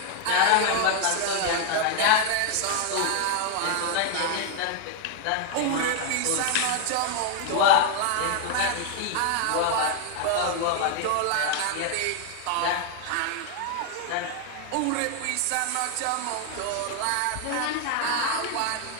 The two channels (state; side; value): different; both; correlation 0.00